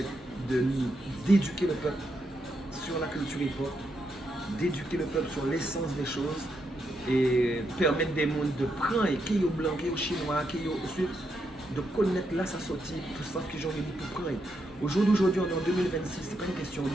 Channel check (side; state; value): both; normal; correlation 0.81